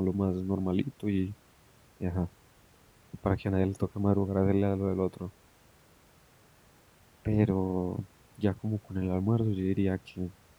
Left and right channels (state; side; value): identical; both; correlation 1.00